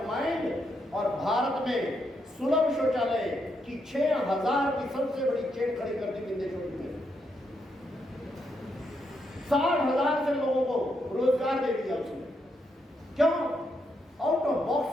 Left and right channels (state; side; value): normal; both; correlation 0.79